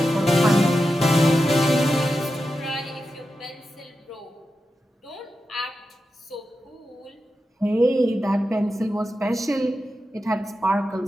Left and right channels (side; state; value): both; normal; correlation 0.90